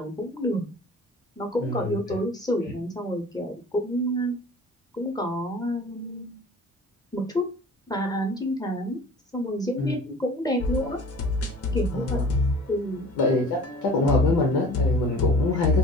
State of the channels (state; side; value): normal; both; correlation 0.45